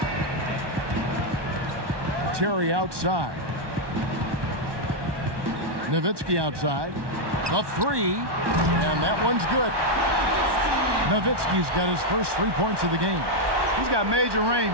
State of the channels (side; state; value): left; late; 1.2 ms